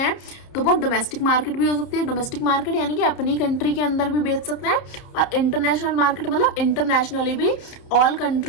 तो वो डोमेस्टिक मार्केट भी हो सकती है। डोमेस्टिक मार्केट यानी कि अपनी कंट्री के अंदर भी बेच सकते हैं, और इंटरनेशनल मार्केट मतलब इंटरनेशनली भी, all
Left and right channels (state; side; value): late; right; 30 ms